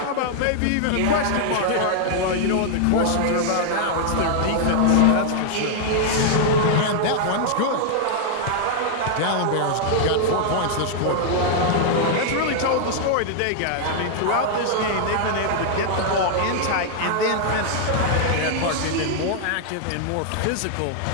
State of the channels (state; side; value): different; both; correlation 0.00